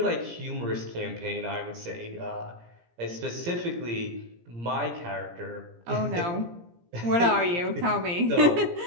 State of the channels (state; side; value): late; left; 17 ms